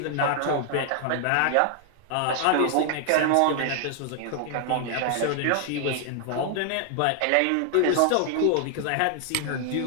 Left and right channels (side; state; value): both; different; correlation 0.00